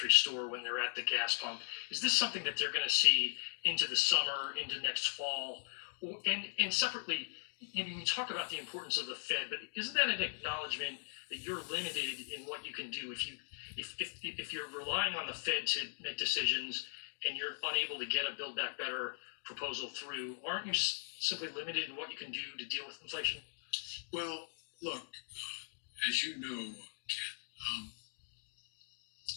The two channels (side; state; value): right; silent; digital silence